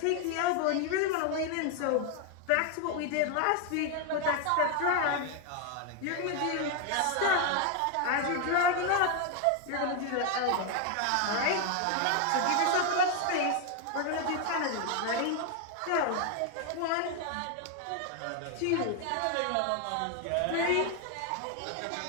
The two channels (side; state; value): both; different; correlation 0.01